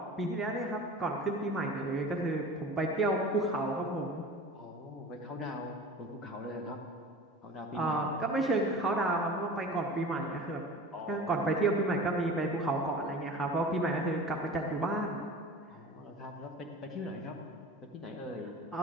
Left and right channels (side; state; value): both; normal; correlation 0.38